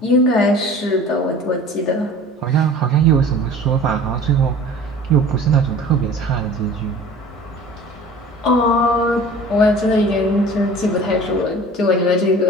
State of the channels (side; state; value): both; normal; correlation 0.43